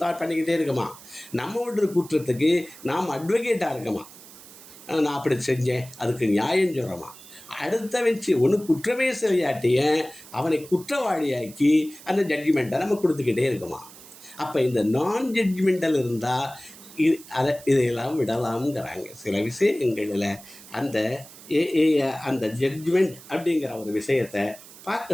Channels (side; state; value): right; noise; hiss, 19 dB below the sound